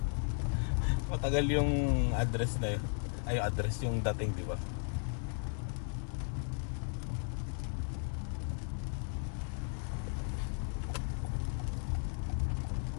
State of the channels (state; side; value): silent; right; 54 dB below the other